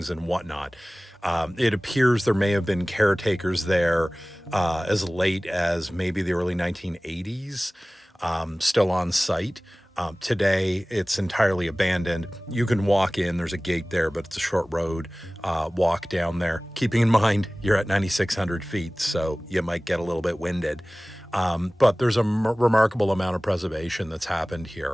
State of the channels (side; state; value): both; normal; correlation 0.98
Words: and whatnot. It appears there may have been caretakers there as late as maybe the early 1980s, still on site. Today, it's entirely abandoned. You can walk in, there's a gate there, but it's a short road, walk down there. Keeping in mind, you're at 9,600 feet, so you might get a little bit winded. But there's a remarkable amount of preservation that's happened